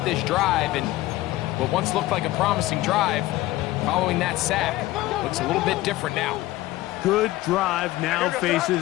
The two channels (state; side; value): quieter; right; 17.0 dB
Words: this drive, and what once looked like a promising drive, following that sack, looks a little bit different now. Good drive now faces